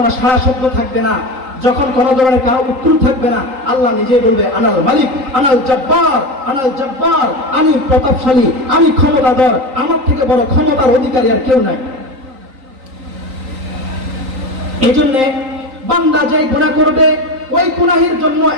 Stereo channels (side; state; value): left; late; 3.8 ms